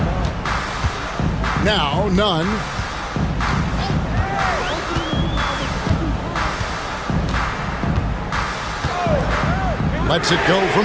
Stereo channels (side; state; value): both; identical; correlation 1.00